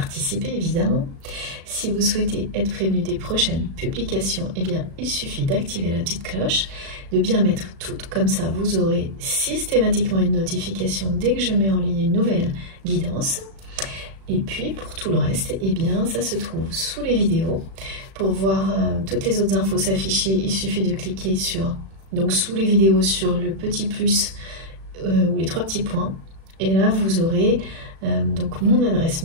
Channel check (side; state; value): left; late; 36 ms